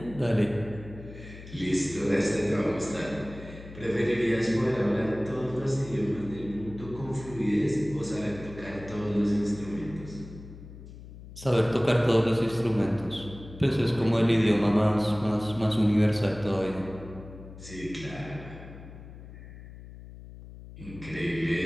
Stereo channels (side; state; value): left; noise; hum, 15 dB below the sound